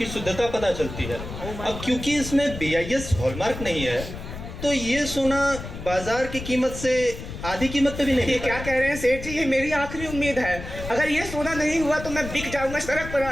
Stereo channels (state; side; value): noise; left; rumble, 10 dB below the sound